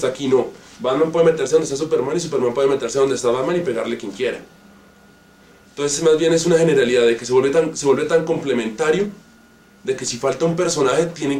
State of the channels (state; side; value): identical; both; correlation 1.00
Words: aquí, no. Batman puede meterse donde está Superman y Superman puede meterse donde está Batman y pegarle quien quiera. Entonces más bien es una generalidad de que se vuelve tan complementario de que si falta un personaje tienen